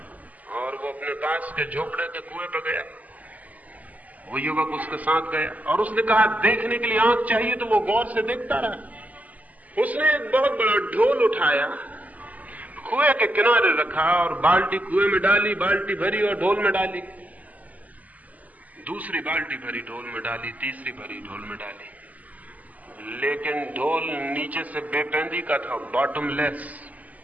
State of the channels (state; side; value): late; left; 0.076 ms